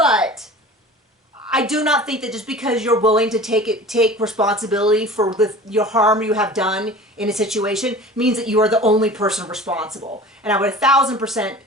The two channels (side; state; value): both; normal; correlation 0.40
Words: I do not think that just because you're willing to take responsibility for your harm you have done in a situation means that you are the only person responsible. And I would 1,000%,